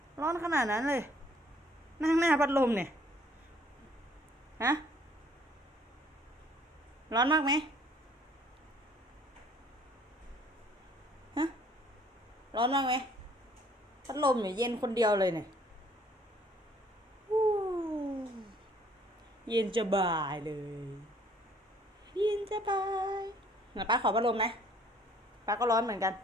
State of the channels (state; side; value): normal; both; correlation 0.60